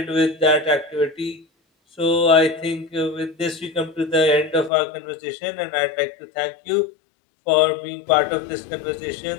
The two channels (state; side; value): drops out; right; at 4.7 s